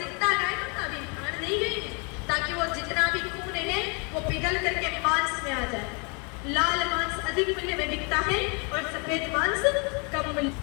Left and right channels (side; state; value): right; quieter; 33.9 dB